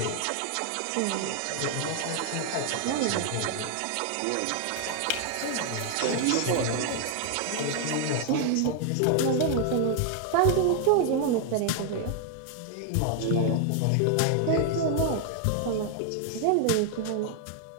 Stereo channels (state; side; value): different; both; correlation 0.00